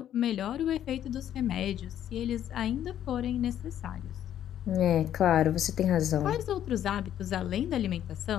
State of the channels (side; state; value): right; quieter; 10.8 dB